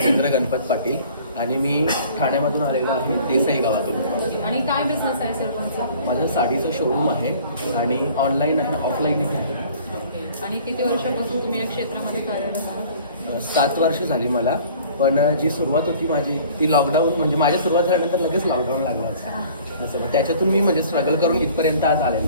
गणपत पाटील आणि मी ठाण्यामधून आलेलो आहे, देसाई गावातून. आणि काय बिझनेस आहे सर तुमचा? माझं साडीचं शोरूम आहे आणि ऑनलाईन आहे, ऑफलाईनही आहे. आणि किती वर्षापासून तुम्ही या क्षेत्रामध्ये कार्यरत आहात? 7 वर्ष झाली मला, पण जी सुरुवात होती माझी ती लॉकडाऊन, म्हणजे माझ्या सुरुवात झाल्यानंतर लगेच लॉकडाऊन लागलं असं. त्याच्यातून मी म्हणजे स्ट्रगल करून इथपर्यंत आज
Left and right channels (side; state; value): both; inverted; correlation -0.50